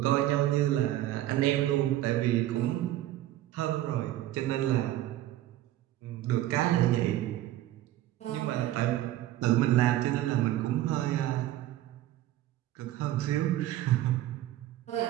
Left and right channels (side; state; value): left; quieter; 14.2 dB